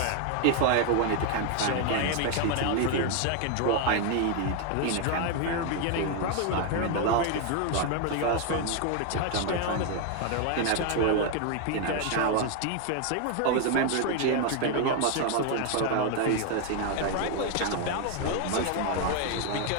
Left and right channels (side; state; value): both; different; correlation 0.01